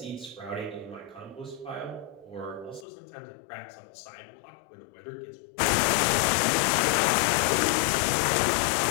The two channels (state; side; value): drops out; right; at 2.9 s